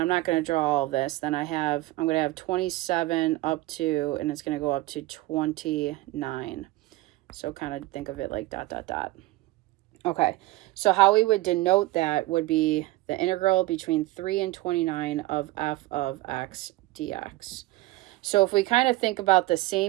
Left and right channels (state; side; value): quieter; left; 18.9 dB